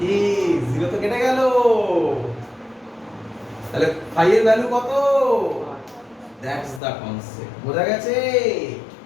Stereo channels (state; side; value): drops out; right; at 6.8 s